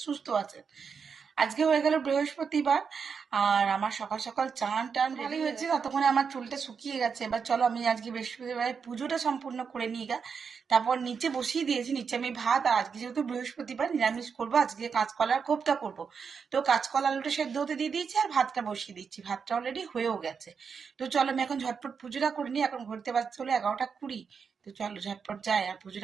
সুস্থ আছেন। আজকে হয়ে গেল বৃহস্পতিবার, আর আমার সকাল সকাল চান টান ভালোই হয়েছে, ততক্ষণে আমার চুলটা শুকিয়ে গেছে। এবার চলো আমি আজকে বৃহস্পতিবার পুজোটা সম্পূর্ণ করে নিই গা। তারপর নিচে বসিয়ে দিয়েছি, নিচে আমি ভাত, আর আজকে যেহেতু বৃহস্পতিবার নিরামিষ করবো, আজকে কাঁচকলার কোপ্তা করবো। তো কাঁচকলা আলুটা সেদ্ধ হতে দিয়ে দিয়েছি আর ভাতটা বসিয়ে দিচ্ছি, ভাতটা অলরেডি হয়েও গেছে। তো চলো আমি এখন ঝটপট পুজোটা করে নিই, এখন ঘুরতে পারছি হলো 11টা 20। তো চলো ঝটপট যাই আর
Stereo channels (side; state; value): left; quieter; 6.1 dB